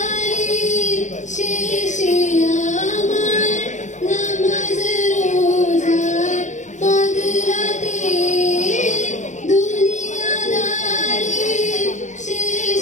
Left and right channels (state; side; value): late; right; 0.35 ms